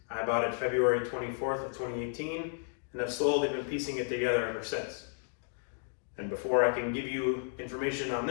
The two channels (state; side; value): silent; right; 56 dB below the other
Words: I bought it February 24th of 2018, and I've slowly been piecing it together ever since. And before I can give you information on